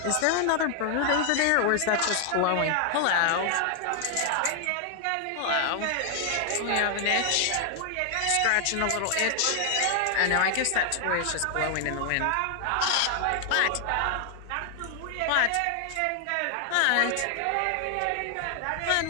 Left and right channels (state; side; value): different; both; correlation 0.00